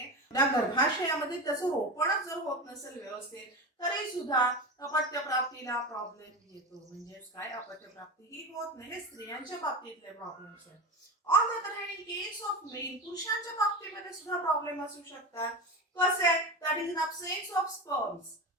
त्या गर्भाशयामध्ये त्याचं रोपणच जर होत नसेल व्यवस्थित तरी सुद्धा अपत्य प्राप्तीला प्रॉब्लेम येतो. म्हणजेच काय, अपत्य प्राप्ती ही होत नाही. हे स्त्रियांच्या बाबतीतले प्रॉब्लेम्स आहेत. On the other hand in case of male, पुरुषांच्या बाबतीमध्ये सुद्धा प्रॉब्लेम असू शकतात. कसे, that is in absence of sperms.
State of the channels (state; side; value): normal; both; correlation 0.23